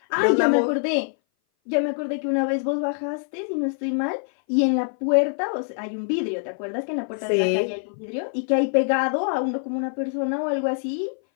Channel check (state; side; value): silent; right; 59 dB below the other